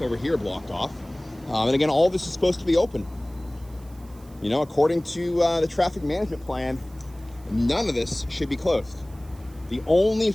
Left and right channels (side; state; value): right; noise; hiss, 27 dB below the sound